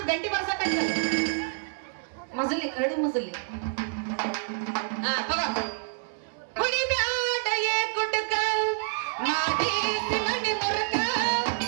ಗಂಟಿ ಬರ್ಸಕ ಮಸಲಿ ಕರಡಿ ಮಸಲಿ ಹಾ ತಗೋ ಕುಡಿಬ್ಯಾಡ ಏ ಕುಟಕ ಮಾಡಿ ಸಿಮಣಿ ಮುರಕ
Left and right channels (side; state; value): left; silent; 60 dB below the other